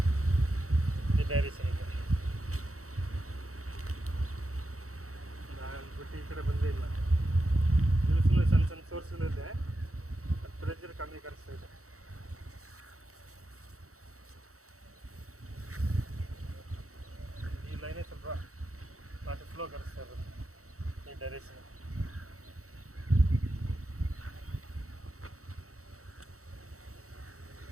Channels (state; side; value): late; left; 0.64 ms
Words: ಈ ಡೈರೆಕ್ಷನ್ ಇದೆ ಬಿಟ್ಟು ಈ ಕಡೆ ಬಂದೇ ಇಲ್ಲ. ಇದು ಸುಮ್ಮನೆ ಸಣ್ಣ ಸಣ್ಣ ಸೋರ್ಸ್ಗಳಿದೆ, ಪ್ರೆಷರ್ ಕಮ್ಮಿ ಕಳಿಸ್ತಾ ಇದೆ. ಈ ಲೈನೇ ಸ್ವಲ್ಪ ವಾಟರ್ ಫ್ಲೋ ಕಳಿಸ್ತಾ ಇರೋದು ಈ ಡೈರೆಕ್ಷನ್.